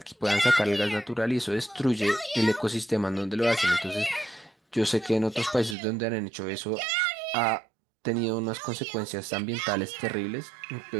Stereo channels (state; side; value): drops out; left; at 5.8 s